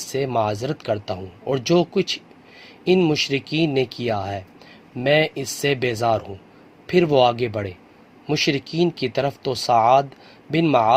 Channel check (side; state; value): both; identical; correlation 1.00